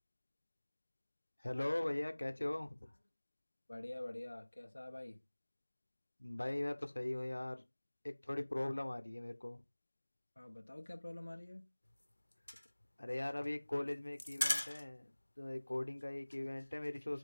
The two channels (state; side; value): inverted; both; correlation -1.00